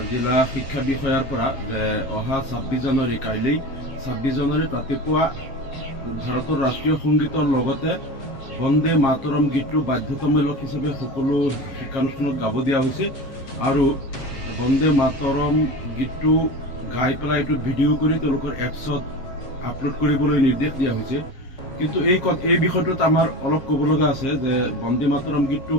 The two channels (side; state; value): right; late; 7.4 ms